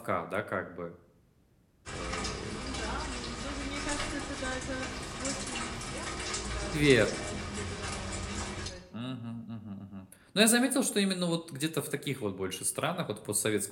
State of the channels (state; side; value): identical; both; correlation 1.00